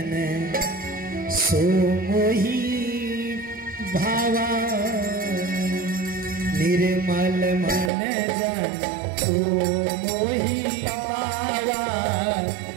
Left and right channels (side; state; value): left; drops out; at 7.9 s